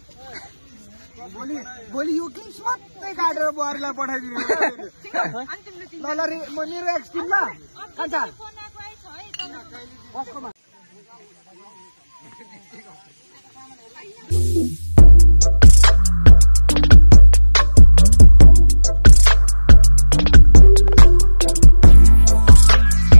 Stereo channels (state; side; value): inverted; both; correlation -1.00